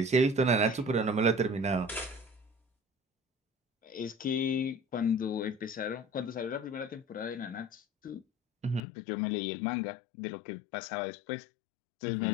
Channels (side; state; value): right; drops out; at 8.8 s